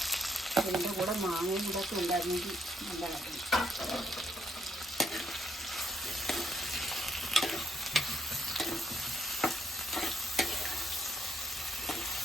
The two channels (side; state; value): both; normal; correlation 0.74